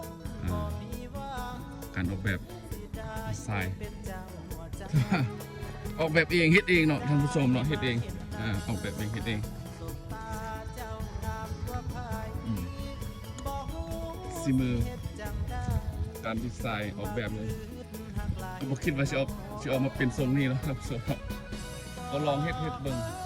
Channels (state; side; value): identical; both; correlation 1.00